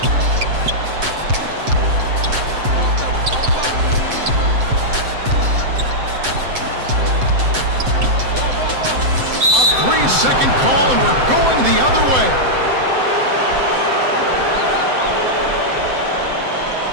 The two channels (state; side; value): late; left; 7.8 ms